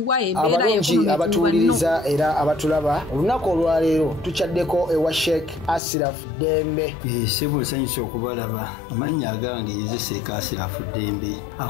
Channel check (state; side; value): drops out; right; at 5.8 s